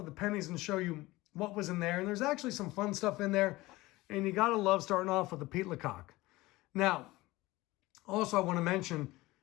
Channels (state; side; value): quieter; right; 19.6 dB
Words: the pennies and show you what was in there. And there's actually some fun stuff in there. And you got to love starting off with the Pete Lecoq. Now, also I want to mention,